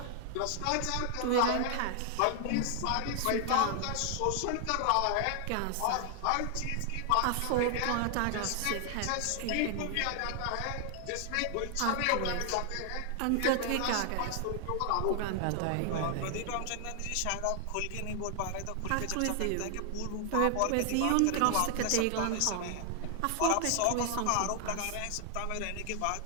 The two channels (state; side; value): different; both; correlation 0.00